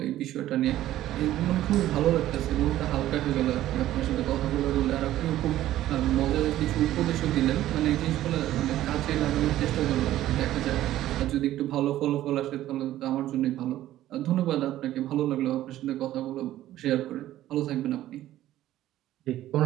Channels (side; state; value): left; quieter; 13.8 dB